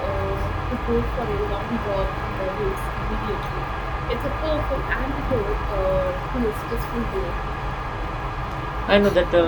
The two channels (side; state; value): both; identical; correlation 1.00